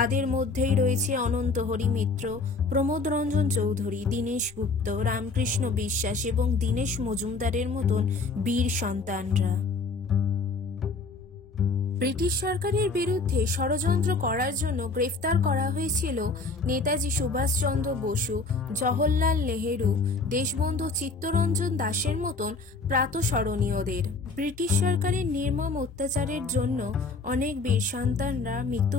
মধ্যেই রয়েছে অনন্ত হরি মিত্র, প্রমোদ রঞ্জন চৌধুরী, দীনেশ গুপ্ত, রামকৃষ্ণ বিশ্বাস এবং দীনেশ মজুমদারের মতন বীর সন্তানরা। ব্রিটিশ সরকারের বিরুদ্ধে ষড়যন্ত্র করার জন্য গ্রেফতার করা হয়েছিল নেতাজি সুভাষচন্দ্র বসু, জওহরলাল নেহেরু, দেশবন্ধু চিত্তরঞ্জন দাসের মতন প্রাতঃস্মরণীয়দের। ব্রিটিশ সরকারের নির্মম অত্যাচারের জন্য অনেক বীর সন্তানরা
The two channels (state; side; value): quieter; right; 3.9 dB